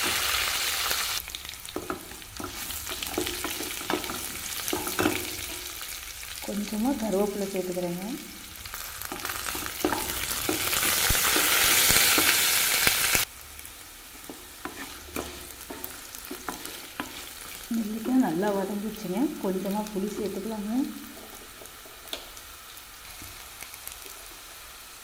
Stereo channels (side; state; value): both; identical; correlation 1.00